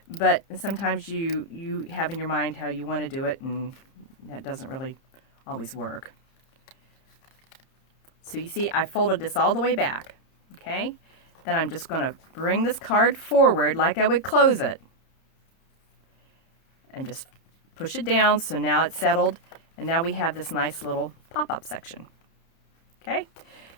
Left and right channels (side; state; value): right; late; 30 ms